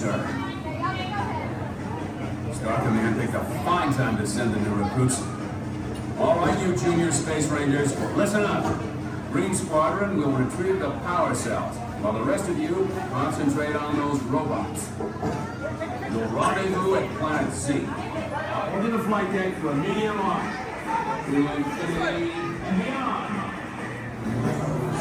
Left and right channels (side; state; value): both; identical; correlation 1.00